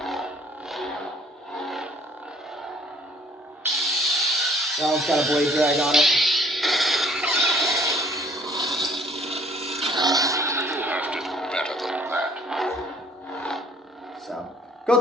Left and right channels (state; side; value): normal; both; correlation 0.58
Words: That one's got a blade drag on it. You'll have to do better than that. So, go